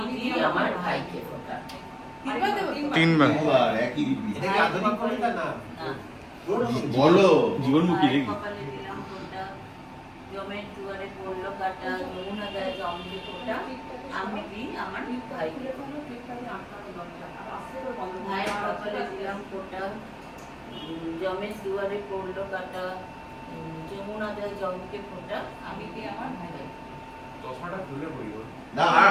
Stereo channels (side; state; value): both; identical; correlation 1.00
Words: দিই আমার ভাইকে ফোঁটা। তিনবার একই রীতি। এটা কি আধুনিক কবিতা না? বলো জীবনমুখী ভাইয়ের নাকি? কপালে দিলাম ফোঁটা, জমের দুয়ারে পড়লো কাটা, যমুনা দেয় জমকে ফোঁটা, আমি দিই আমার ভাইকে ফোঁটা। ভাইয়ের কপালে দিলাম ফোঁটা, জমের দুয়ারে পড়লো কাটা, যমুনা দেয় জমকে ফোঁটা, আমি দিই আমার ভাইকে। চশমাটা খুলে পড়ি বল। না